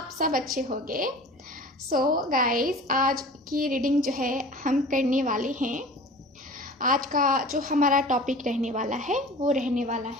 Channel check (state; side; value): normal; both; correlation 0.40